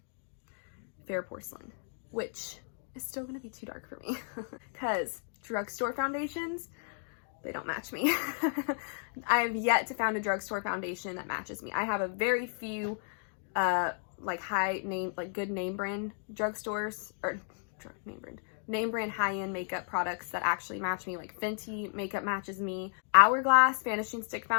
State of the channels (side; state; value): right; silent; 55 dB below the other